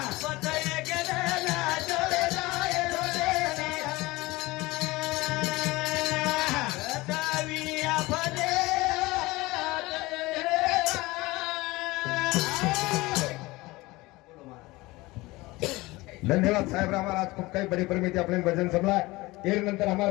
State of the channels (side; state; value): right; quieter; 21.0 dB